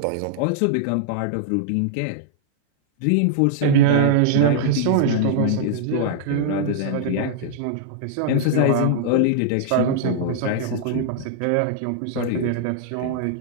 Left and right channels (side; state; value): both; different; correlation -0.01